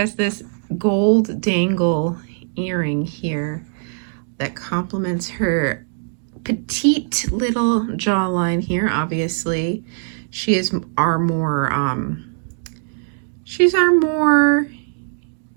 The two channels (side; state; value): left; silent; digital silence